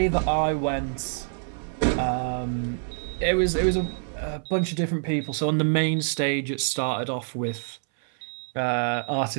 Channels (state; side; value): silent; left; 61 dB below the other